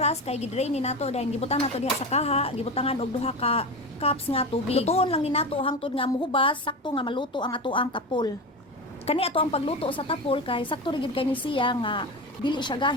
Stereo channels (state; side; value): normal; both; correlation 0.24